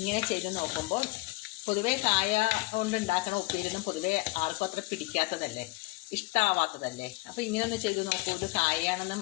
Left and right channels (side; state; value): right; quieter; 22.4 dB